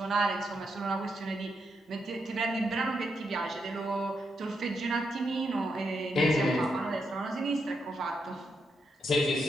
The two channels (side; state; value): both; normal; correlation 0.82